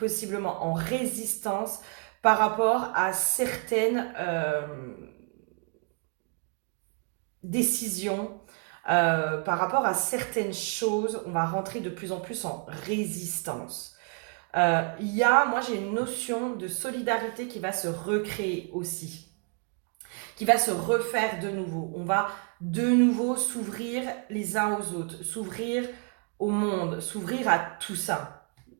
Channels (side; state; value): left; quieter; 36.7 dB